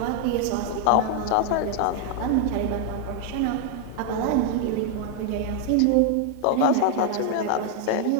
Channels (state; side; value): different; both; correlation 0.00